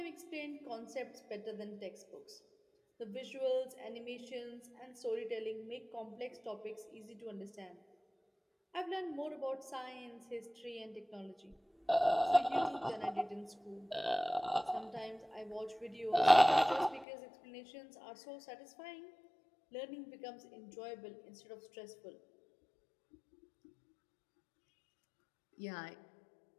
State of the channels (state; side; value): drops out; right; at 17.1 s